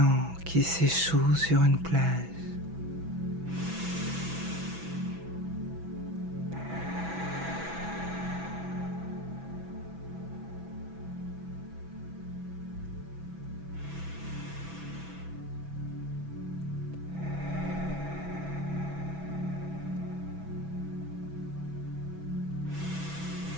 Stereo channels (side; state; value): left; late; 6.1 ms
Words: qui s'échoue sur une plage.